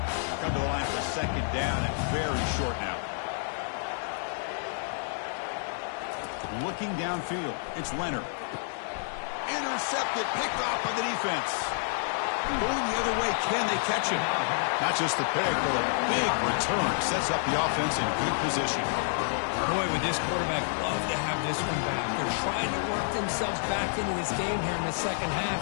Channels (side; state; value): right; silent; 58 dB below the other